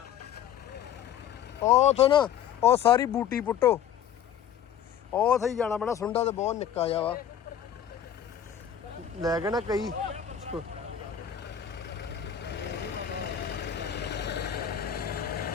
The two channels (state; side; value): quieter; right; 9.4 dB